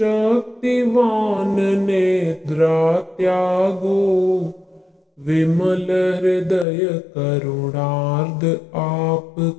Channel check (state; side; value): drops out; right; at 6.7 s